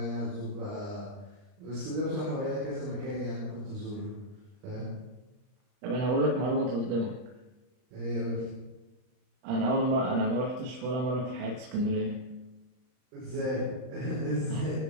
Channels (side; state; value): left; late; 39 ms